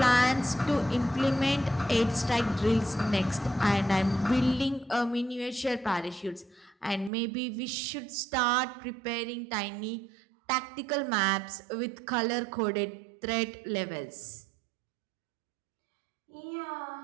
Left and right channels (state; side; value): drops out; left; at 7.1 s